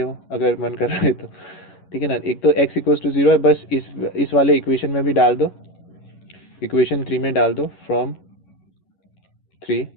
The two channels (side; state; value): right; late; 11 ms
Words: अगर मन कर रहा है तो, ठीक है ना। एक तो x इक्वल्स टू 0 है, बस इस वाले इक्वेशन में भी डाल दो, इक्वेशन 3 में डाल दो। From 3